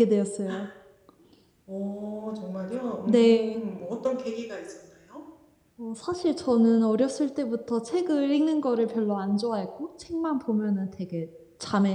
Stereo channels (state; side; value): identical; both; correlation 1.00